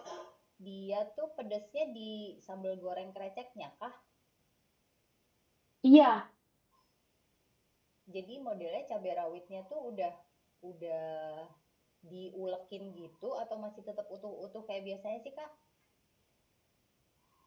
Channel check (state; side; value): identical; both; correlation 1.00